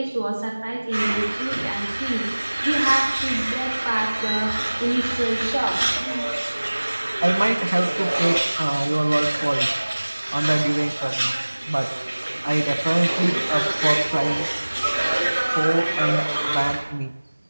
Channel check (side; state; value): both; inverted; correlation -1.00